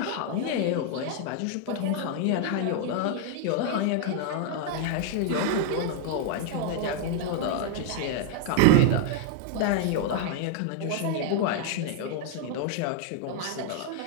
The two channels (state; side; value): different; both; correlation 0.00